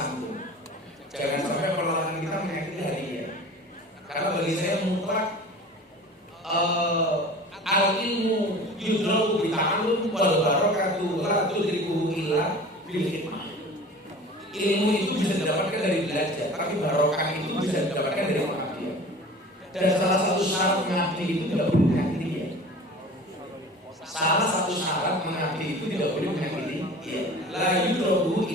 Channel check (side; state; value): both; normal; correlation 0.40